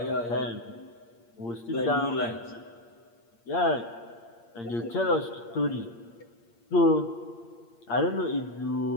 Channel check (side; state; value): right; late; 8.6 ms